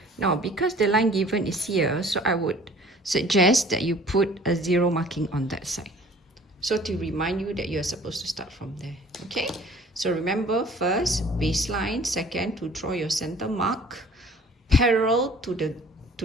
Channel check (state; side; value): normal; both; correlation 0.51